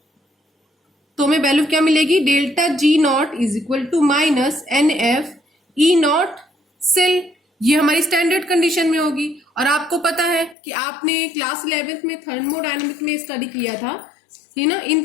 तो हमें वैल्यू क्या मिलेगी, delta G naught is equal to minus NFE naught cell. ये हमारी स्टैंडर्ड कंडीशन में होगी। और आपको पता है कि आपने क्लास 11th में थर्मोडायनेमिक में स्टडी किया था, कि ना, इन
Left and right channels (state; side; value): drops out; right; at 10.6 s